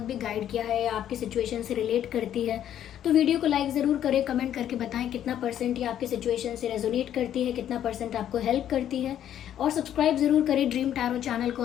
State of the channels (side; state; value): right; quieter; 10.7 dB